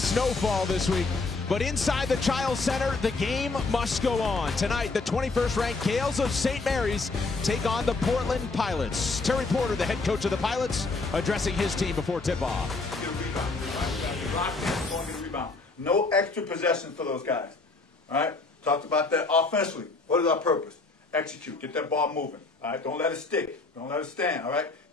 this week. But inside the Chiles Center, the game must go on. Tonight, the 21st ranked Gales of St. Mary's take on the Portland Pilots. Terry Porter, the head coach of the Pilots, addressing his team before tip-off. Get a rebound. No extra possession for those guys. All right? Talked about that offensively. What is our purpose? Execute. Get that ball moving. All right? Don't let it stick. Don't let it stand. All right?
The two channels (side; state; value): right; quieter; 3.7 dB